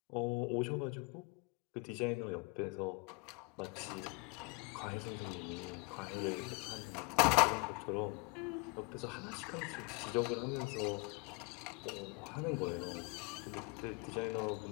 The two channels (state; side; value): quieter; right; 28.8 dB